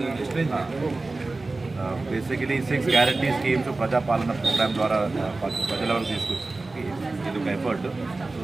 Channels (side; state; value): left; quieter; 3.4 dB